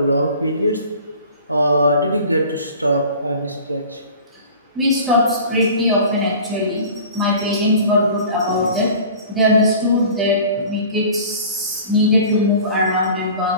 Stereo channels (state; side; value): inverted; both; correlation -0.43